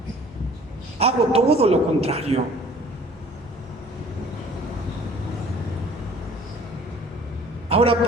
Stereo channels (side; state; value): both; normal; correlation 0.50